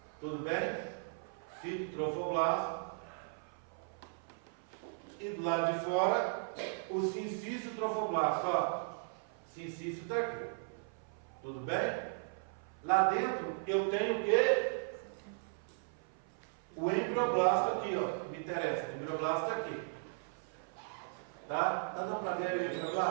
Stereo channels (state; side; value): silent; left; 53 dB below the other